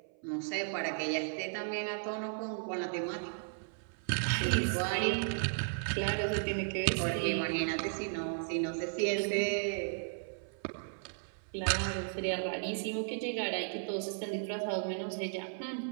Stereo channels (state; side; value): silent; left; 54 dB below the other